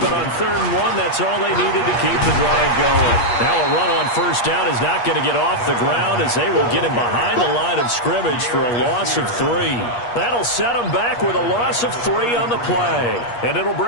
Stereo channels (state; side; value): late; right; 8.4 ms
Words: but on third and one, that's all they needed to keep the drive going. Now a run on first down is not going to get off the ground as they will get him behind the line of scrimmage for a loss of 3. That'll set him back with a loss of 3 on the play. And it'll